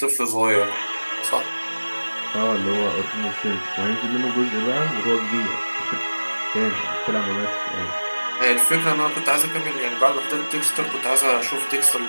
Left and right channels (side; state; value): both; inverted; correlation -1.00